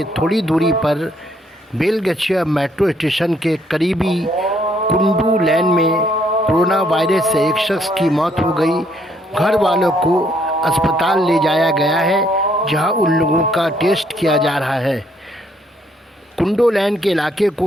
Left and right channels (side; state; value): both; normal; correlation 0.68